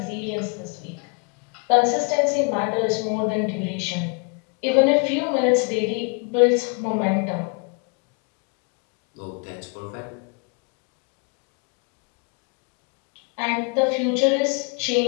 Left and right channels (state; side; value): quieter; right; 33.6 dB